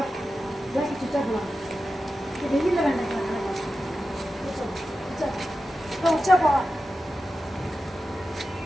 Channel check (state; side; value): normal; both; correlation 0.92